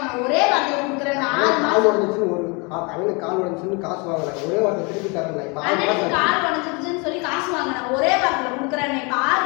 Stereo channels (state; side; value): quieter; right; 30.5 dB